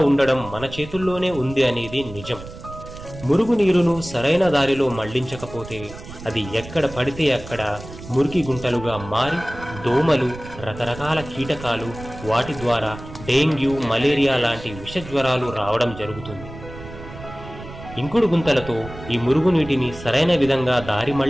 ఉండడం మన చేతుల్లోనే ఉంది అనేది నిజం. మురుగునీరును సరైన దారిలో మళ్లించకపోతే అది ఎక్కడ పడితే అక్కడ మురికి గుంటలుగా మారి దోమలు, రకరకాల కీటకాలు, వాటి ద్వారా డెంగ్యూ, మలేరియా లాంటి విషజ్వరాలు రావడం జరుగుతుంది. ఇంకుడు గుంతలతో ఈ మురుగునీటిని సరైన విధంగా దారి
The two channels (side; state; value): right; noise; rumble, 14 dB below the sound